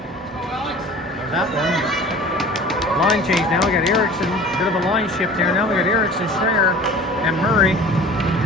Or that one. Line change now. We got Erickson. Bit of a line shift here. Now we got Erickson, Schreier, and Murray.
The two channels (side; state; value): both; normal; correlation 0.43